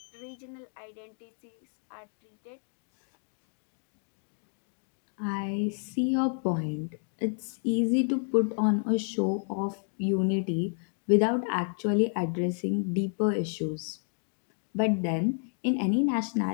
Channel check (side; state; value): right; silent; 57 dB below the other